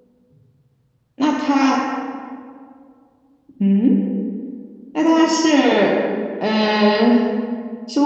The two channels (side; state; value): both; identical; correlation 1.00